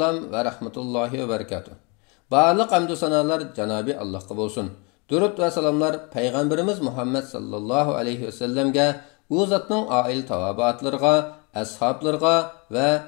va rahmatullohi va barakatuh. Barliq hamdu sanolar Janobi Allohga bo'lsin. Durud va salomlar payg'ambarimiz Muhammad sallallohu alayhi va sallamga, u zotning oil tavobatlariga, ashablariga va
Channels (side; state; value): right; quieter; 31.2 dB